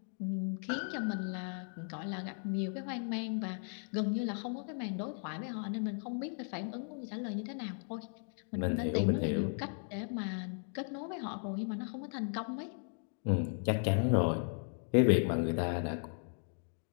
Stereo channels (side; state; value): right; silent; 54 dB below the other